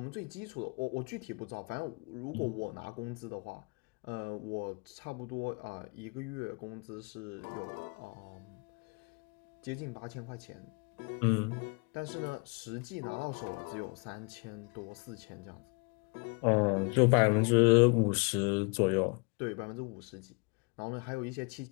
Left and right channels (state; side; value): quieter; right; 32.0 dB